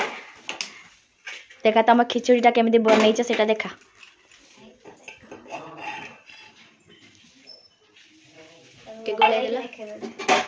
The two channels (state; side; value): identical; both; correlation 1.00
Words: देखा तुम खिचड़ीटा केमिति बनैछ सेटा देखा के गोले देला